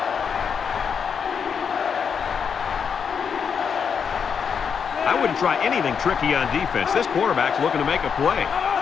I wouldn't try anything tricky on defense. This quarterback's looking to make a play.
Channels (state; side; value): quieter; right; 6.7 dB